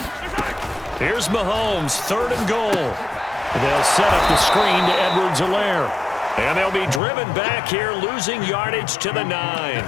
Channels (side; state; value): right; drops out; at 7.0 s